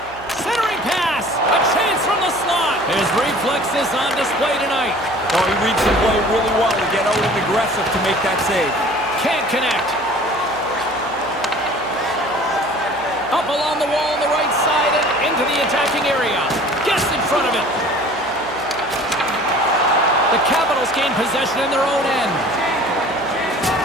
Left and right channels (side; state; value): right; noise; hum, 21 dB below the sound